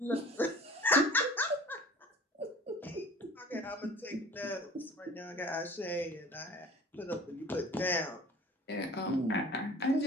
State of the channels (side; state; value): both; normal; correlation 0.44